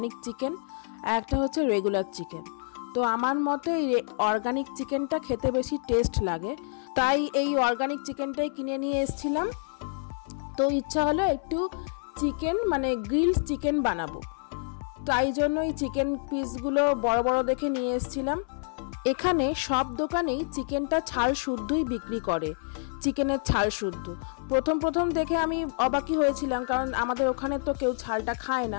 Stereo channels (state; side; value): silent; right; 58 dB below the other